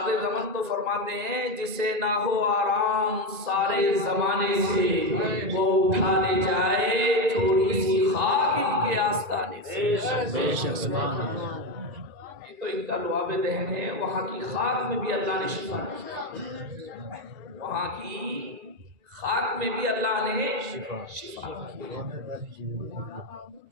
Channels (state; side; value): late; left; 1.9 ms